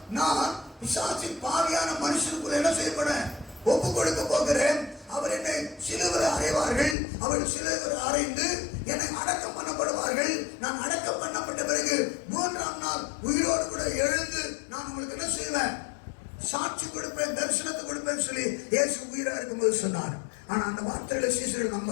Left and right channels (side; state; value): right; drops out; at 7.0 s